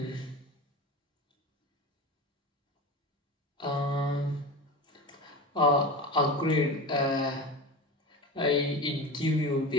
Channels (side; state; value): both; normal; correlation 0.28